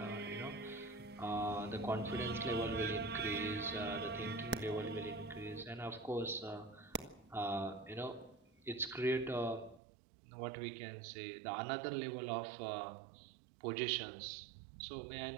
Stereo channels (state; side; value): drops out; left; at 9.8 s